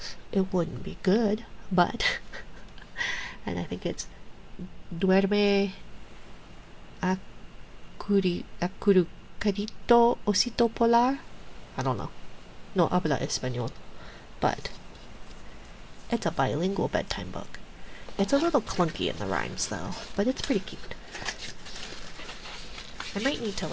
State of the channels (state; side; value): identical; both; correlation 1.00